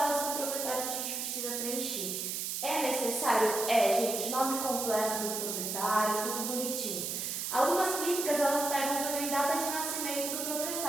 do proprietário que a gente precisa preencher. É necessário? Gente, nome completo do proprietário, tudo bonitinho. Algumas clínicas, elas pegam também data de nascimento do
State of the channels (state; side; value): noise; right; hiss, 2 dB below the sound